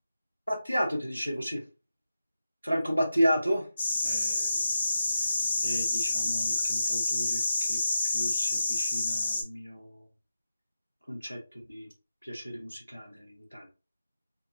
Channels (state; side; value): inverted; both; correlation -0.89